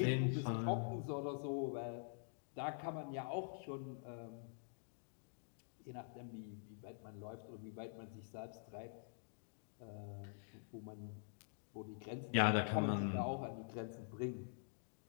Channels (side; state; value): right; silent; digital silence